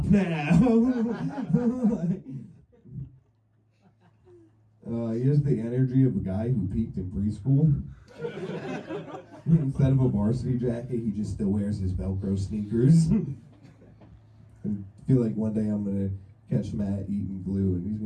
now. He has the energy of a guy who peaked in preschool. Instead of a varsity jacket, he just still wears his Velcro sneakers. I feel like one day I'm going to catch Matt eating glue, and he's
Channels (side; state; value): both; identical; correlation 1.00